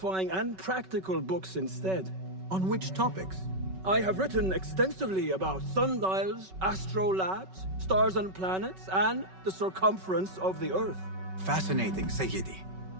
and practical books instead. On which topics? I have written extensively about sundials, astrolabes, stars and planets, and the circumference of the Earth. Fascinating, Sayyidi.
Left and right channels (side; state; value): left; late; 5.3 ms